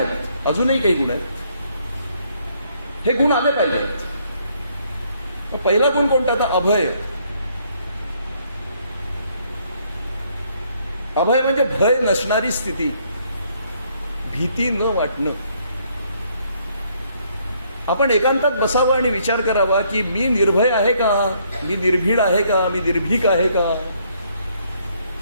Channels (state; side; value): inverted; both; correlation -0.68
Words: अजूनही काही गुण आहेत. हे गुण आले पाहिजेत. मग पहिला गुण कोणता? आता अभय. अभय म्हणजे भय नसणारी स्थिती, भीती न वाटणं. आपण एकांतात बसावं आणि विचार करावा की मी निर्भय आहे का, मी निर्भीड आहे का, मी निर्भीक आहे का